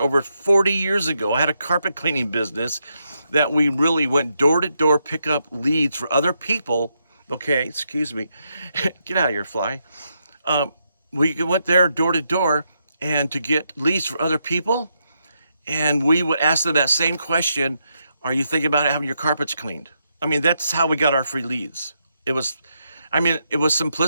40 years ago. I had a carpet cleaning business that we really went door to door, pick up leads for other people. Okay, excuse me. Get out of here, fly. We went there door to door and to get leads for other people. And we would ask them that same question. Are you thinking about having your carpets cleaned? I mean, that's how we got our free leads. It was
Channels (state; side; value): inverted; both; correlation -0.81